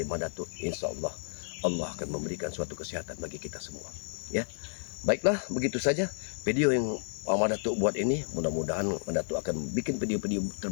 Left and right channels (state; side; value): silent; right; digital silence